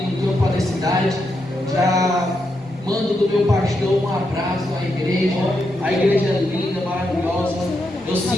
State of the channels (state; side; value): normal; both; correlation 0.83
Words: campo da cidade. Já mando do meu pastor um abraço à igreja. A igreja é linda, maravilhosa. Eu